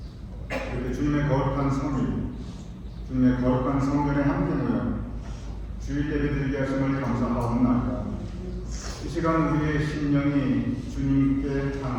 이렇게 주님의 거룩한 성일, 주님의 거룩한 성전에 함께 모여 주일 예배 드리게 하심을 감사하옵나이다. 이 시간 우리의 심령이 주님께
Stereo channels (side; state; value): both; identical; correlation 1.00